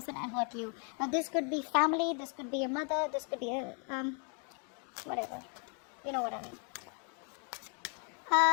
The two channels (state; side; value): quieter; right; 39.6 dB